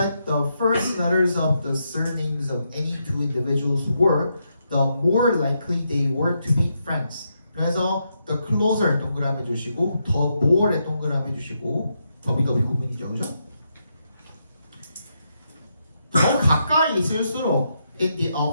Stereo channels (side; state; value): both; inverted; correlation -0.81